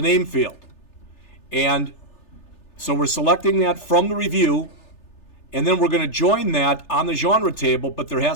name field. And so we're selecting that from the review, and then we're going to join that on the genre table, but there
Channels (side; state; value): right; late; 3.4 ms